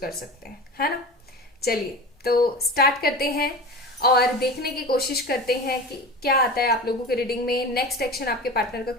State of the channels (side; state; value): both; normal; correlation 0.31